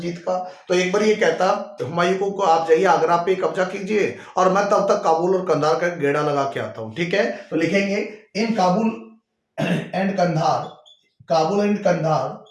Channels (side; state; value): both; identical; correlation 1.00